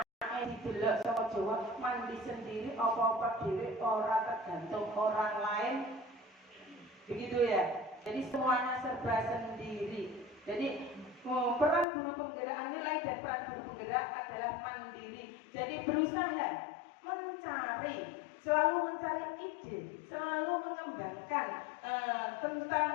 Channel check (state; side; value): drops out; right; at 11.9 s